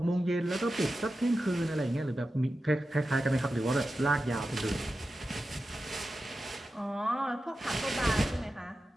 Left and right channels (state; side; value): normal; both; correlation 0.92